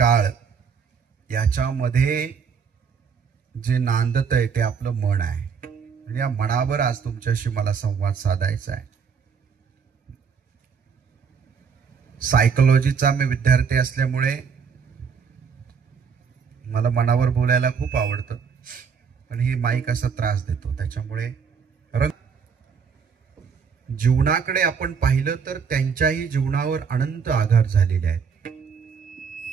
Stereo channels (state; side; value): quieter; left; 6.3 dB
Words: याच्यामध्ये जे नांदत आहे ते आपलं मन आहे. आणि या मनावर आज तुमच्याशी मला संवाद साधायचा आहे. सायकोलॉजीचा मी विद्यार्थी असल्यामुळे मला मनावर बोलायला खूप आवडतं, पण ही माईक असा त्रास देतो. त्याच्यामुळे जीवनाकडे आपण पाहिलं तर त्यांच्याही जीवनावर अनंत आघात झालेले आहेत.